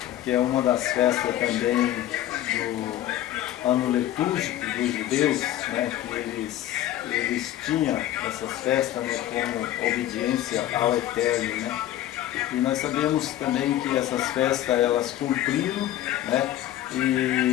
que é uma das festas também do ano litúrgico dos judeus, né, que eles tinham essas festas, né, como obediência ao Eterno, né? E nós sabemos também que essas festas elas cumpriram, né?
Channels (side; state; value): right; quieter; 13.0 dB